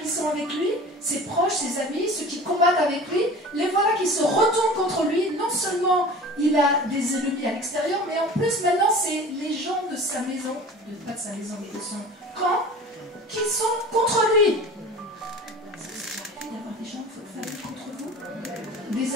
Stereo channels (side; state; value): both; normal; correlation 0.39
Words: qui sont avec lui, ses proches, ses amis, ceux qui combattent avec lui, les voilà qui se retournent contre lui. Non seulement il a des ennemis à l'extérieur, mais en plus maintenant c'est les gens de sa maison, pas de sa maison, mais de son camp, qui sont contre lui. Ça arrive d'avoir des gens de votre famille contre vous,